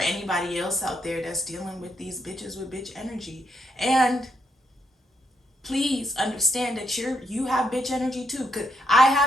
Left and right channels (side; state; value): both; normal; correlation 0.78